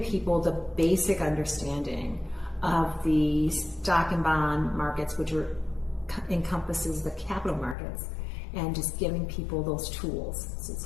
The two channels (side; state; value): right; drops out; at 7.8 s